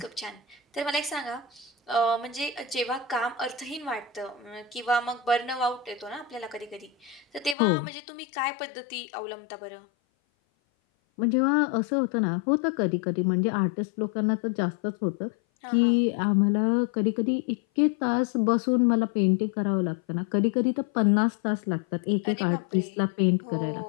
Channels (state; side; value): drops out; right; at 7.6 s